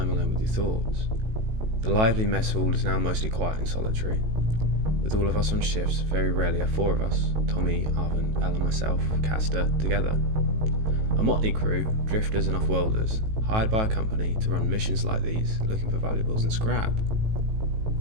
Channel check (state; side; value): late; left; 18 ms